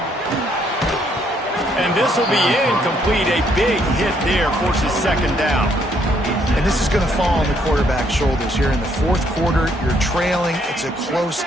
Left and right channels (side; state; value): both; normal; correlation 0.70